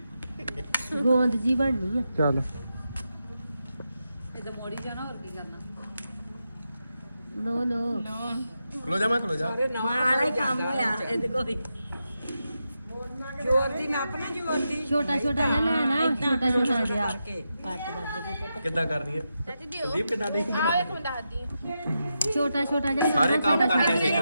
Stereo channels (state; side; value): inverted; both; correlation -0.87